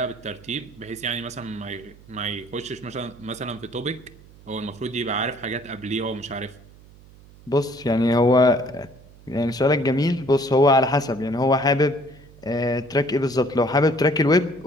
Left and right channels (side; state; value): right; noise; hum, 23 dB below the sound